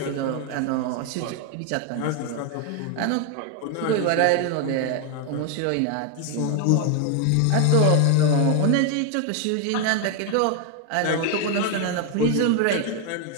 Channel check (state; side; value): different; both; correlation 0.01